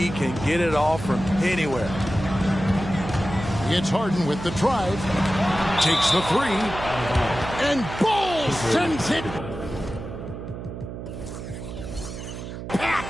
can get it off from anywhere. It's Harden with the drive. Takes the three. And Ball sends it back.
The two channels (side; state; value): right; noise; hum, 9 dB below the sound